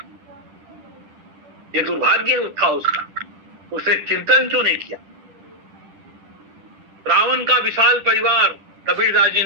ये दुर्भाग्य था उसका, उसने चिंतन क्यों नहीं किया? रावण का विशाल परिवार, कबीरदास जी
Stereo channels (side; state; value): left; late; 10 ms